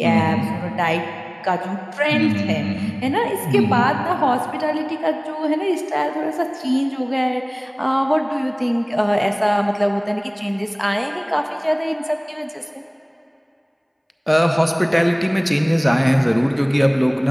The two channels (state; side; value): identical; both; correlation 1.00